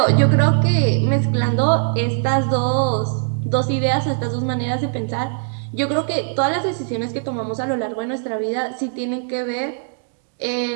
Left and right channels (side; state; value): left; silent; digital silence